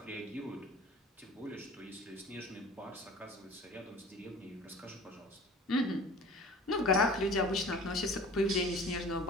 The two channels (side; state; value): both; normal; correlation 0.43